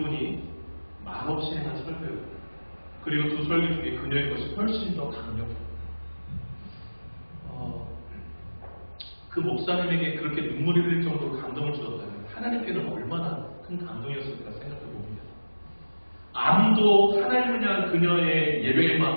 말없이 행한 설교였고, 그리고 두 설교 중에 그녀의 것이 훨씬 더 강력해요. 그 목사님에게 그렇게 눈물이 흘릴 정도로 감동을 주었다면 하나님께는 얼마나 큰 감동이었을까 생각해 봅니다. 아무도 하나님을 향한 그녀의 예배의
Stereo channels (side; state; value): both; inverted; correlation -1.00